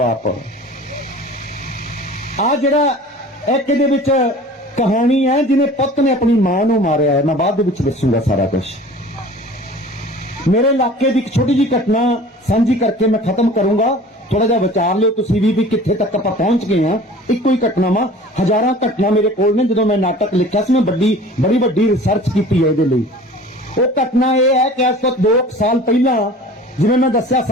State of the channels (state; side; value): normal; both; correlation 0.43